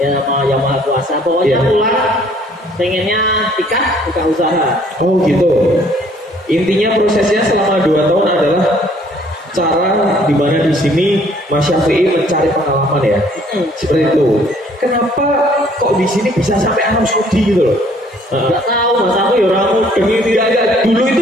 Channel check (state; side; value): normal; both; correlation 0.60